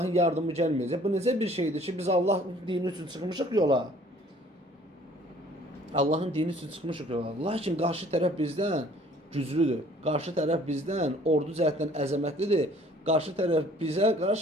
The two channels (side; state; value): both; normal; correlation 0.55